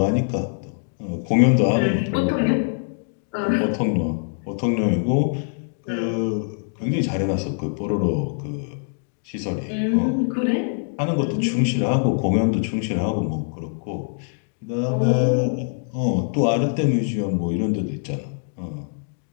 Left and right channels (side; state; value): right; silent; digital silence